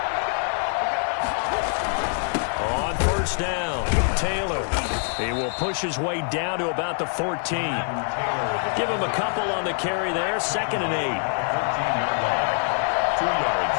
On first down, Taylor. He will push his way down to about the 14. Give him a couple on the carry there. 2nd and 8. 14-yard line. 2 yards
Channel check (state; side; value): silent; right; 62 dB below the other